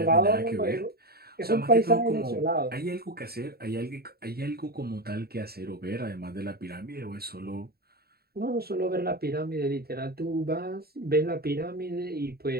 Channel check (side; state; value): left; late; 0.45 ms